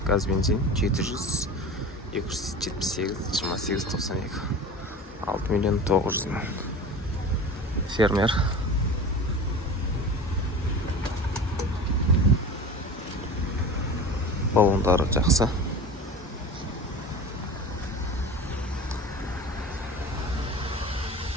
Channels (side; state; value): both; normal; correlation 0.34